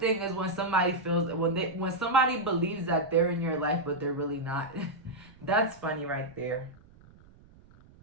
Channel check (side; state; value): right; noise; rumble, 25 dB below the sound